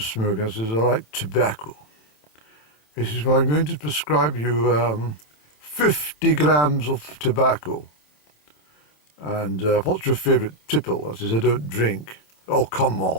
I says, "I like tobacco." He says, "Well, I'm going to prescribe you 50 grams of tobacco. And what's your favourite tipple?" I says, "I don't drink." "Oh, come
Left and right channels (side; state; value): right; late; 27 ms